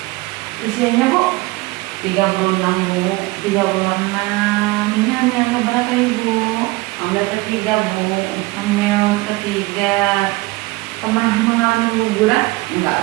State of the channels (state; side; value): quieter; left; 22.2 dB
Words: Usianya Bu? 36 Bu. 36. Ini hamil keberapa Ibu? Hamil ketiga Bu. Hamil ketiga. Pernah mengalami guguran?